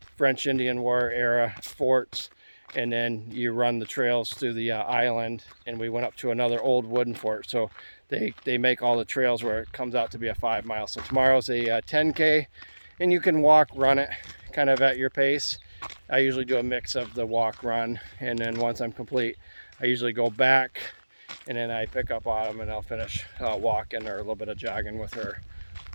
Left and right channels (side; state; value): both; inverted; correlation -1.00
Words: French Indian War era forts, and then you run the trails through the island, and we went up to another old wooden fort. So they make all the trails where it comes out to be a 5 mile. So tomorrow's a 10K, and you can walk, run it kind of at your pace. I usually do a mix of the walk, run, and then once I'm complete, I usually go back and then I pick up Autumn and I'll finish walking or a little bit of jogging with her